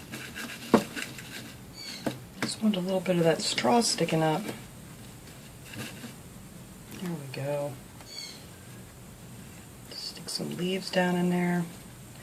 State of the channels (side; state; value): both; identical; correlation 1.00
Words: Just want a little bit of that straw sticking up. There we go. Stick some leaves down in there.